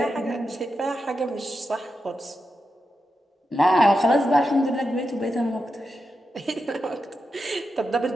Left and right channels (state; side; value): normal; both; correlation 0.88